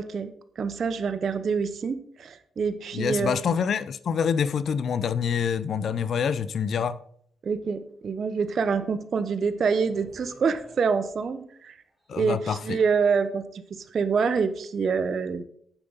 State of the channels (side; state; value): both; normal; correlation 0.76